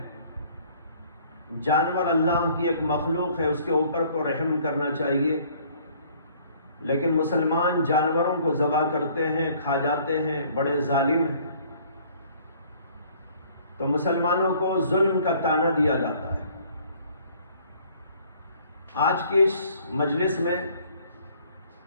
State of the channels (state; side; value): inverted; both; correlation -0.57